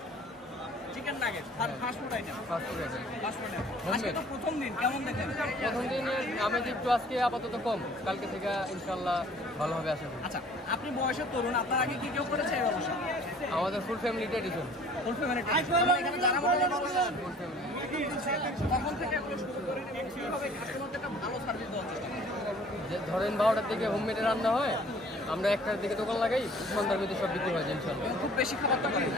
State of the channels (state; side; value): normal; both; correlation 0.52